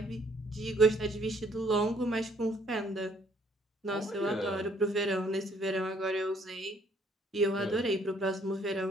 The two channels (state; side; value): normal; both; correlation 0.64